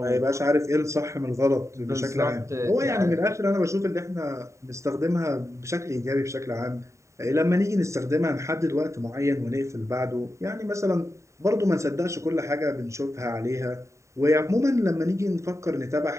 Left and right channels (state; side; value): late; left; 0.14 ms